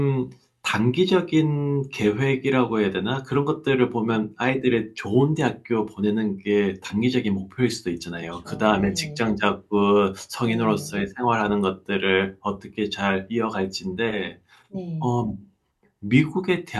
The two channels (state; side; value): identical; both; correlation 1.00